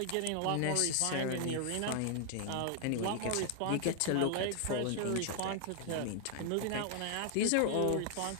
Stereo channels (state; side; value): different; both; correlation 0.00